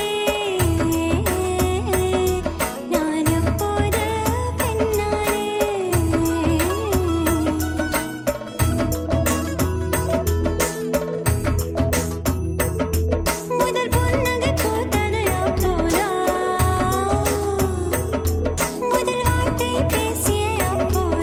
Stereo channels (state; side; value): identical; both; correlation 1.00